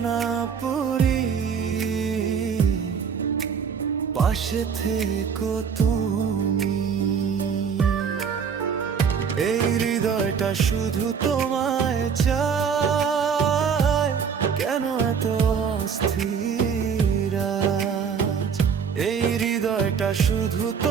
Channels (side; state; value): left; quieter; 6.6 dB